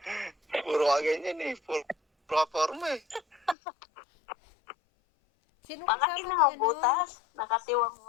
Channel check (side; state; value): right; drops out; at 3.6 s